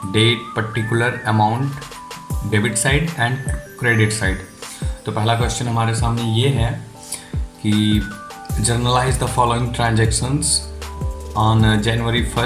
date, particular, amount, debit side and credit side. तो पहला क्वेश्चन हमारे सामने ये है कि journalize the following transactions on January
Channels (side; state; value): both; identical; correlation 1.00